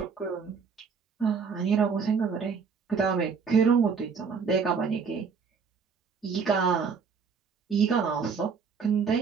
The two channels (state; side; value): quieter; left; 5.7 dB